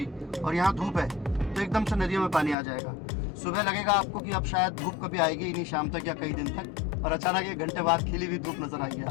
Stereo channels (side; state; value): right; drops out; at 2.6 s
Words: और यहाँ धूप है, तो एकदम से नदियों में पानी आ जाएगा। सुबह लगेगा आपको कि अब शायद धूप कभी आएगी ही नहीं, शाम तक या कई दिन तक, और अचानक 1 घंटे बाद खिली हुई धूप नजर आएगी